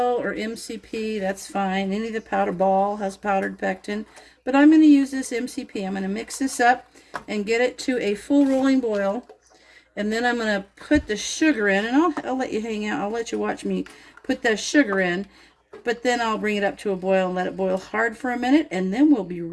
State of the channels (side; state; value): both; identical; correlation 1.00